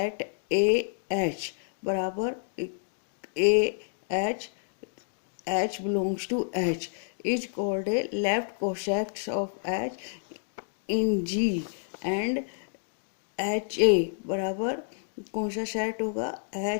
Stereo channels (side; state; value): right; silent; digital silence